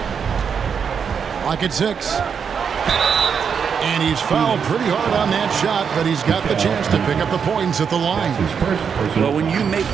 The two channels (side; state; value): left; quieter; 6.7 dB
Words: Clock at 6. And he's fouled pretty hard on that shot, but he's got the chance to pick up the points at the line. Well, when you make